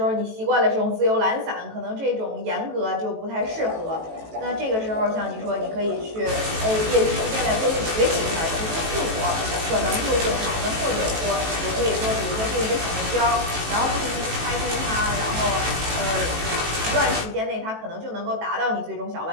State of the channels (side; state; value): left; late; 18 ms